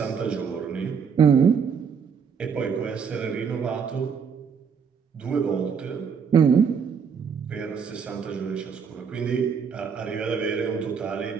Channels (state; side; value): quieter; left; 6.5 dB